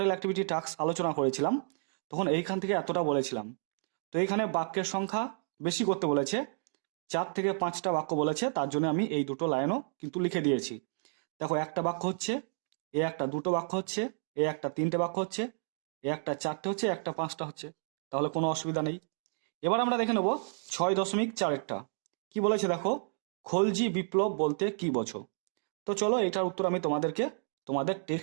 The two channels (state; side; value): silent; left; digital silence